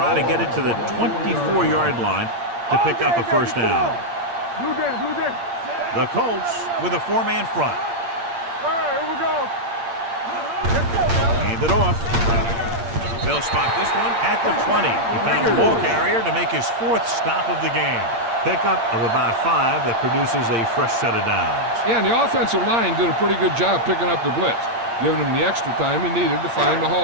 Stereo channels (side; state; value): left; late; 8.7 ms